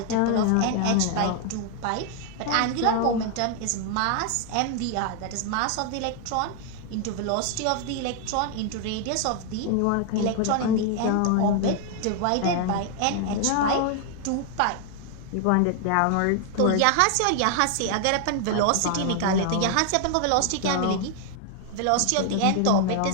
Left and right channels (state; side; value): different; both; correlation 0.00